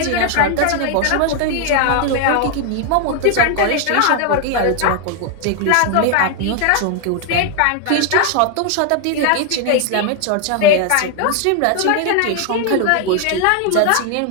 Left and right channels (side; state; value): both; different; correlation 0.00